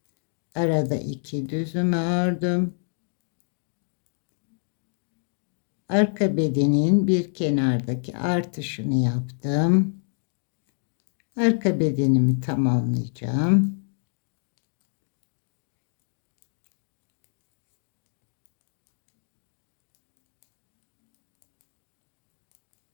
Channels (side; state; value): right; silent; 60 dB below the other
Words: Arada 2 düzümü ördüm. Arka bedenin bir kenardaki artışını yaptım. Arka bedenimi tamamlayacağım.